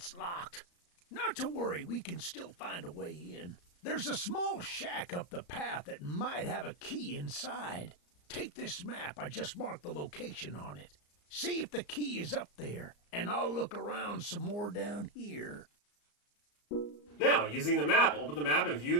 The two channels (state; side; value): late; right; 34 ms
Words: locked. Not to worry, we can still find a way in. There's a small shack up the path that might have a key inside. Take this map. I just marked the location on it. See if the key is up there, and I'll look around some more down here. Now, using the map, open the map and view